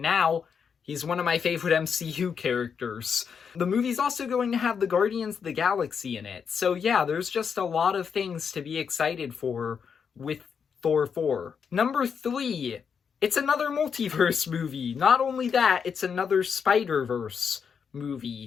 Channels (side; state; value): right; quieter; 6.6 dB